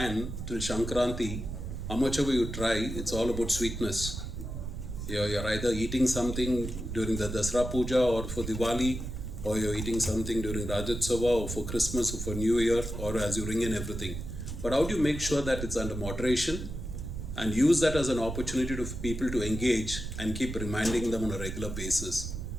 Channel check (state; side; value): noise; right; rumble, 6 dB below the sound